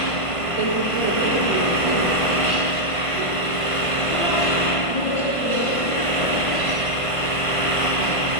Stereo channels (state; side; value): late; right; 1.5 ms